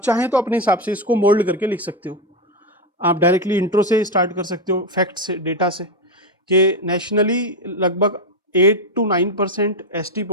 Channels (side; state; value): both; normal; correlation 0.09